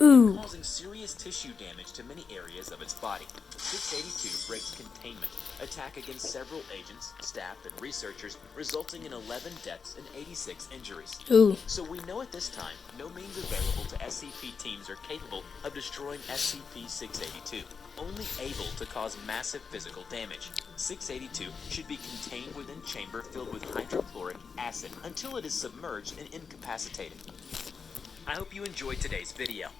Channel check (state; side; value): quieter; right; 5.5 dB